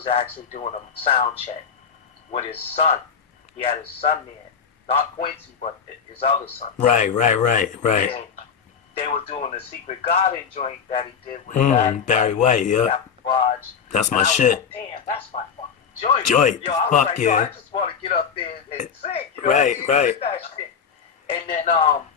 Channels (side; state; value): right; quieter; 6.8 dB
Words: actually doing a sound check with his son. He had his son there, not Quincy, but his other son. Right. And they were doing the Secret Garden joint that he did with Barry White, yeah. Garage. That's my shit. Like, damn, that's my fucking joint. Joint. Yo, I was Fuck like, yeah. yo, I just want to get up there and sing. You know Right, what I mean? right. That shit. And then,